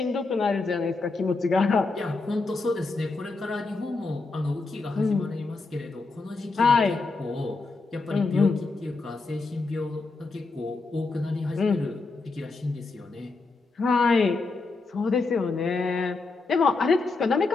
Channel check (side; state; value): right; quieter; 3.8 dB